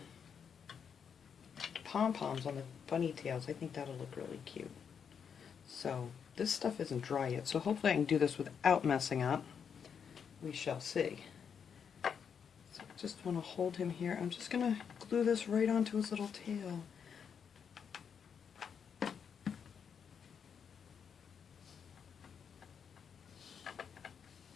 pom-poms on the bunny tails. I think that'll look really cute. So this stuff isn't dry yet, so hopefully I can do this without messing up. We shall see. So I just want to hold him here. I'm just going to glue this right onto his little tail.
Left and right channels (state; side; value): quieter; right; 7.1 dB